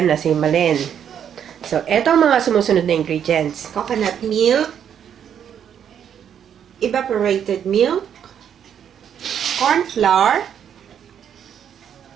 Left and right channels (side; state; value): left; quieter; 8.8 dB